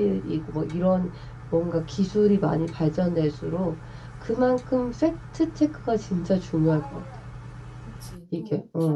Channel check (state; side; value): identical; both; correlation 1.00